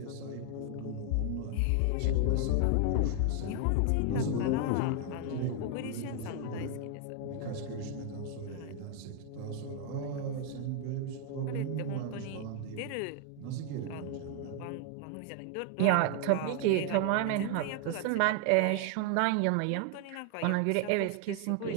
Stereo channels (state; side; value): different; both; correlation 0.00